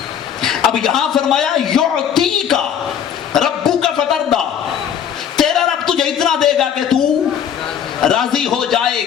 اب یہاں فرمایا یعطی کا ربو کا فتردہ، تیرا رب تجھے اتنا دے گا کہ تو راضی ہو جائے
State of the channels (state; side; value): quieter; right; 8.7 dB